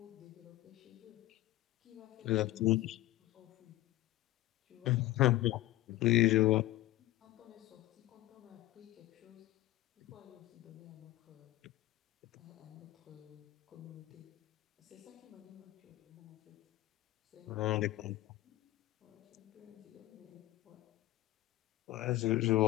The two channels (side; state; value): right; quieter; 16.5 dB